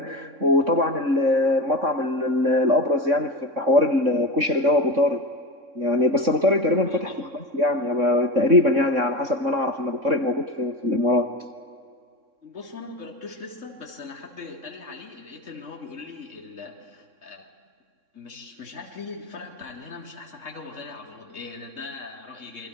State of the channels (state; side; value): late; left; 3.6 ms